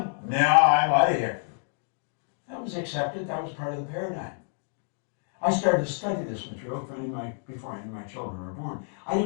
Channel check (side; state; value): right; silent; digital silence